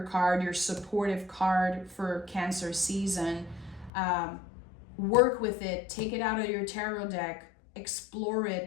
card, your supportive card for Cancer season. Work with it, take it out of your tarot deck, explore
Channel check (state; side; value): drops out; right; at 3.9 s